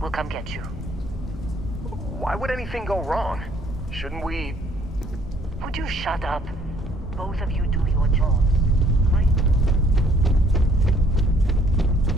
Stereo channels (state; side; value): normal; both; correlation 0.61